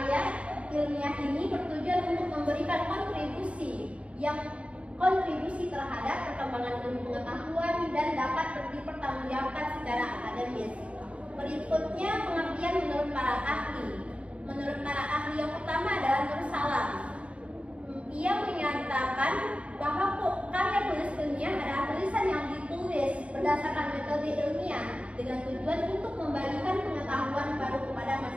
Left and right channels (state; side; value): late; left; 0.062 ms